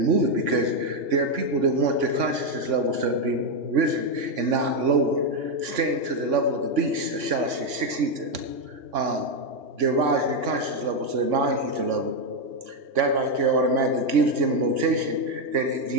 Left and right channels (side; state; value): left; late; 3.6 ms